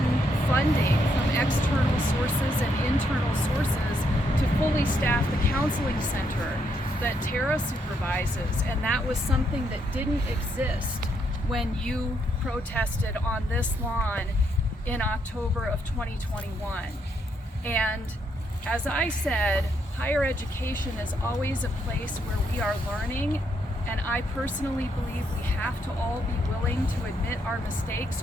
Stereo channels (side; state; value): both; normal; correlation 0.76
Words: funding from external sources and internal sources to fully staff the counseling center. that Tara supervises, and that was something that didn't exist when you protested on this lawn in October of 2021. And as I said, higher education is always a place where we are learning, and I personally believe we have to all be willing to admit our mistakes